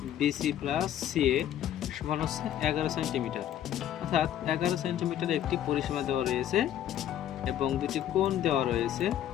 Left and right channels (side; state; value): right; quieter; 11.1 dB